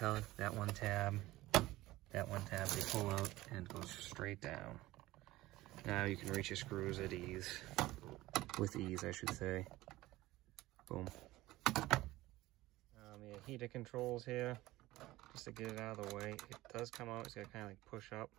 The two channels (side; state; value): left; quieter; 17.7 dB